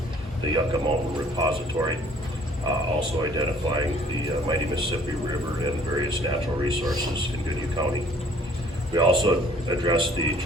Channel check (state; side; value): normal; both; correlation 0.56